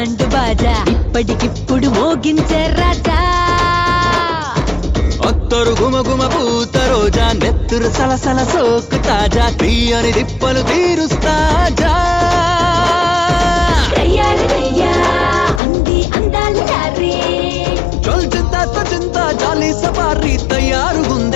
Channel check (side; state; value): right; drops out; at 15.6 s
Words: బాజా, ఇప్పటికిప్పుడు మోగించే రాజా. అత్తరు గుమ గుమ పూత రోజా, నెత్తురు సలసల సోకు తాజా, తీయని దిప్పలు తీరుస్తాజా. అంది అందాలు చారే, చల్ చింతా చింతా జాలి సవారీ